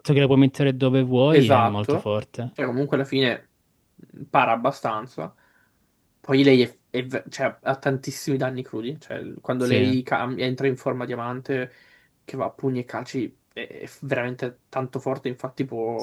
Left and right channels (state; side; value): identical; both; correlation 1.00